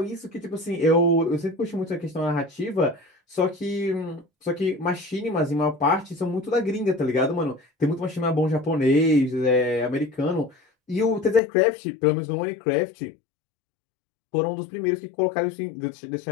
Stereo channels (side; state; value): right; drops out; at 11.4 s